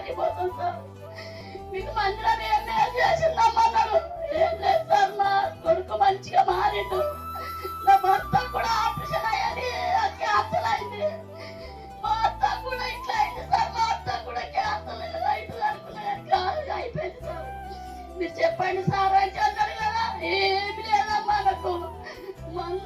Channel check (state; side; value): identical; both; correlation 1.00